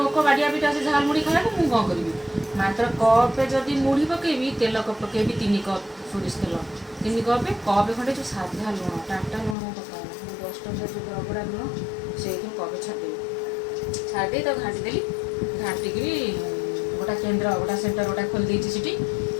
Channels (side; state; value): right; drops out; at 9.6 s